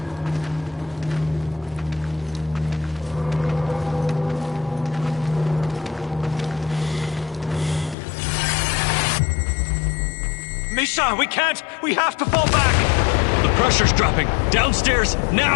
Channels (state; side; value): drops out; right; at 8.0 s